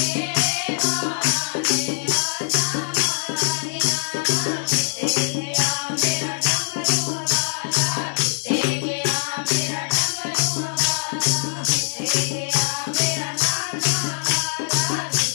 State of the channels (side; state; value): right; silent; digital silence